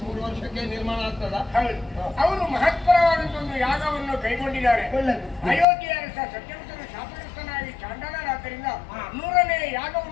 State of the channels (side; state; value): right; drops out; at 5.7 s